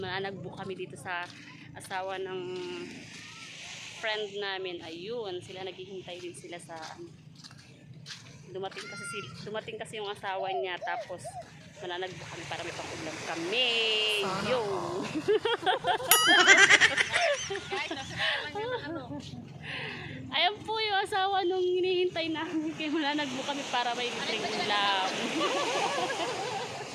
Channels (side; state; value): both; identical; correlation 1.00